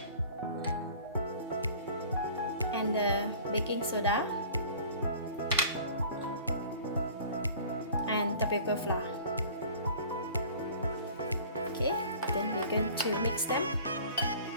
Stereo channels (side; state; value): both; inverted; correlation -0.46